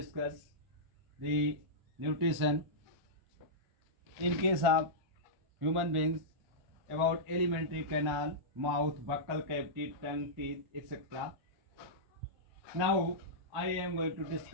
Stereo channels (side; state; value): left; late; 1.3 ms